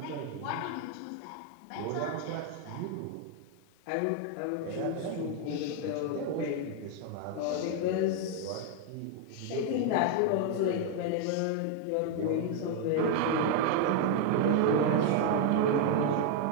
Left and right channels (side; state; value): both; different; correlation 0.00